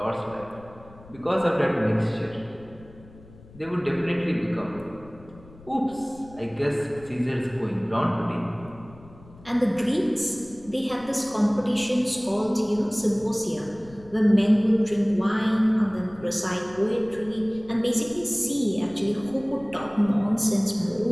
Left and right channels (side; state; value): left; noise; rumble, 22 dB below the sound